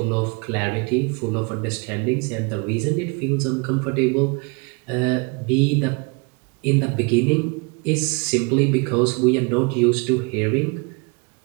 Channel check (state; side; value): quieter; left; 31.0 dB